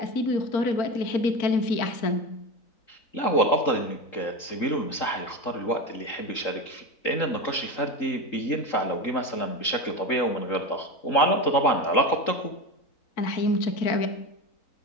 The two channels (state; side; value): late; right; 3.8 ms